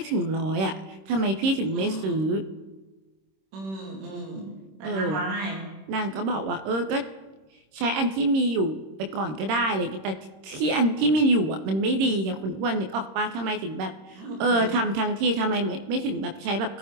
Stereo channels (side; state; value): left; late; 26 ms